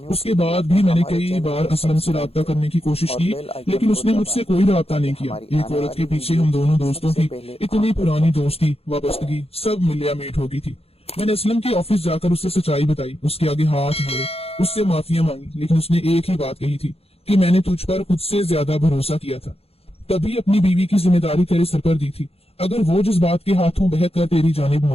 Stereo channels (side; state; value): right; late; 0.29 ms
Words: उसके बाद भी मैंने कई बार असलम से राब्ता करने की कोशिश की, लेकिन उसने मुझसे कोई राब्ता नहीं किया। एक औरत के पीछे हम दोनों दोस्तों की इतनी पुरानी दोस्ती वाबस्तगी सब मिलिया मीट हो गई थी। मैंने असलम के ऑफिस जाकर उससे सच्चाई बताई, उसके आगे हाथ जोड़े, उससे माफिया मांगी, लेकिन उसने एक ही बात कही थी कि मैंने तुझ पर खुद से ज्यादा भरोसा किया था, तभी अपनी बीवी की जिम्मेदारी तेरे सर पर दी थी। अगर वो जज्बात के हाथों बह कर तेरी जानिब